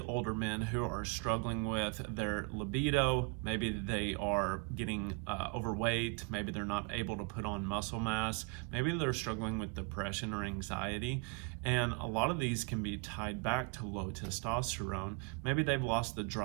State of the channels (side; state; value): left; quieter; 29.6 dB